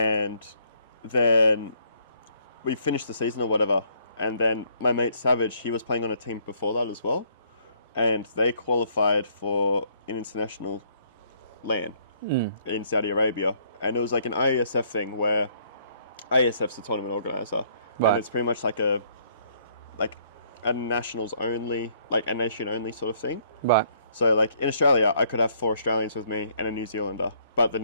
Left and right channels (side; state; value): both; inverted; correlation -0.65